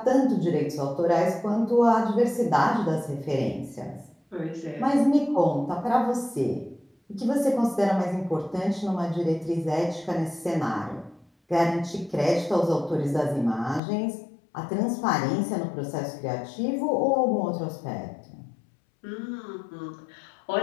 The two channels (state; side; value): drops out; right; at 13.8 s